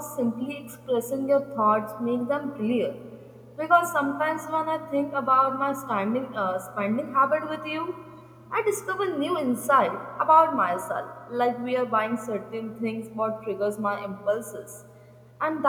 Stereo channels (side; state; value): both; identical; correlation 1.00